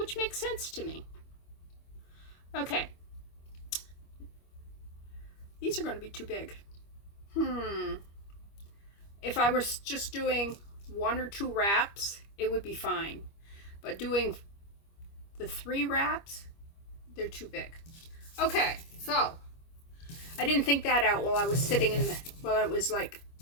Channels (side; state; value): right; late; 25 ms